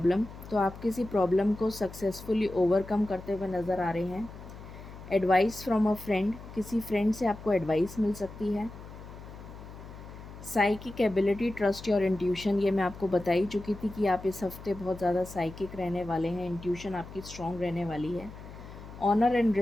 तो आप किसी प्रॉब्लम को सक्सेसफुली ओवरकम करते हुए नज़र आ रहे हैं। एडवाइस फ्रॉम अ फ्रेंड, किसी फ्रेंड से आपको एडवाइस मिल सकती है। Psychic ability, trust your intuition, ये मैं आपको बता ही चुकी थी कि आप इस हफ्ते बहुत ज़्यादा साइकिक रहने वाले हैं। इंट्यूशन आपकी स्ट्रॉन्ग रहने वाली है। ऑनर एंड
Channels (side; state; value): left; noise; hum, 15 dB below the sound